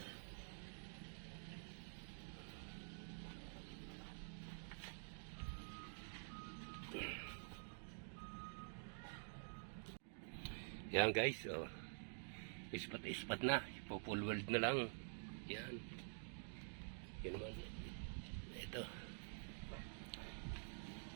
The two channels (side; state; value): left; silent; digital silence